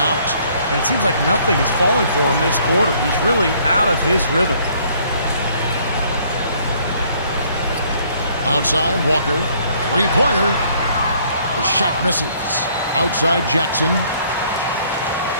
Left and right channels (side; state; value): both; inverted; correlation -0.62